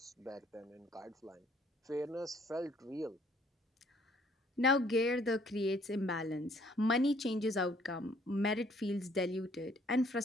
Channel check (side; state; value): both; normal; correlation 0.62